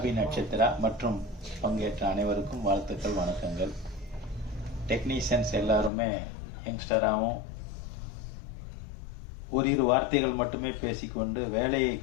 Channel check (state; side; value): drops out; right; at 5.9 s